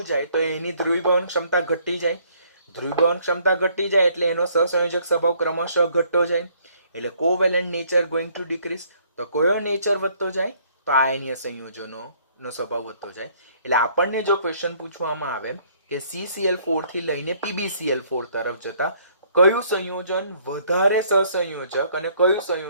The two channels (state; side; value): inverted; both; correlation -0.63